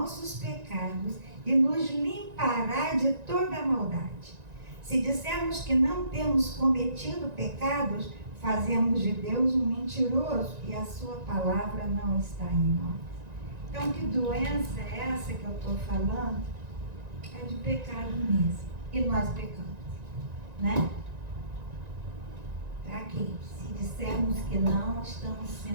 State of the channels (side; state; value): left; late; 1.9 ms